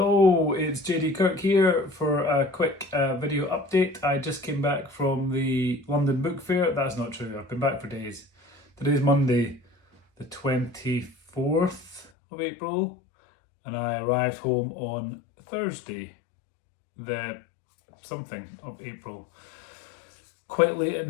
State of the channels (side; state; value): right; drops out; at 12.1 s